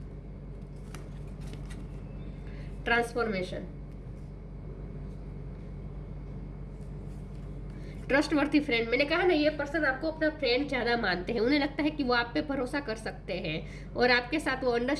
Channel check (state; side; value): identical; both; correlation 1.00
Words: transformation. Trustworthy friend, मैंने कहा ना, ये पर्सन आपको अपना फ्रेंड ज़्यादा मानते हैं। उन्हें लगता है कि वो आप पे भरोसा कर सकते हैं, और आपके साथ वो